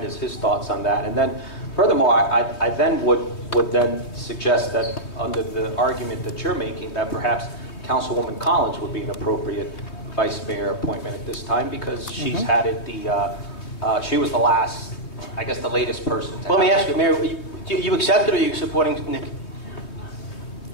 his thoughts on that. And then, furthermore, I then would then suggest that under the argument that you're making, that perhaps Councilwoman Collins would be an appropriate vice mayor appointment at this time, because she's had it she was the last, I guess, the latest person to Let me ask you, Mayor, you accept it, or are you supporting Nick?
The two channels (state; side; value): late; right; 3.2 ms